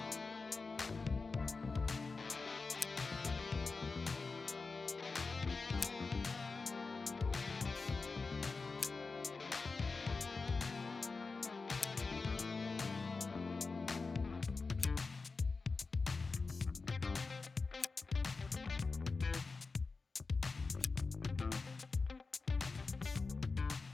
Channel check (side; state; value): right; quieter; 4.2 dB